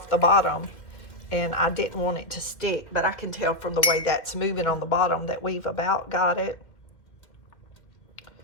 the bottom, and I didn't want it to stick, but I can tell from the way that's moving on the bottom that we've about got it.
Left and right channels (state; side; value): late; right; 1.9 ms